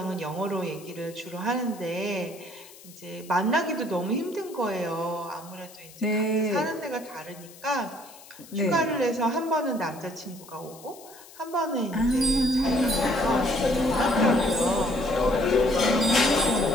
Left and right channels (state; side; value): noise; left; hiss, 20 dB below the sound